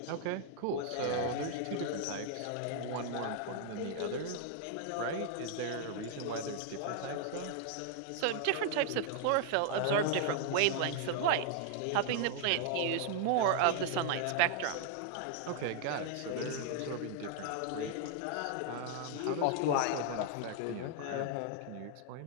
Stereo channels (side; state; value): both; different; correlation 0.00